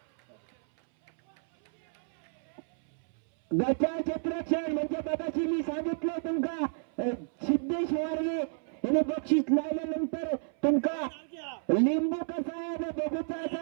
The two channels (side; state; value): left; silent; 58 dB below the other